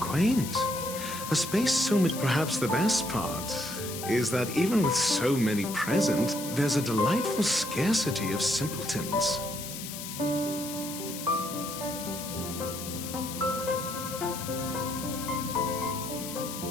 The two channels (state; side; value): noise; left; hiss, 9 dB below the sound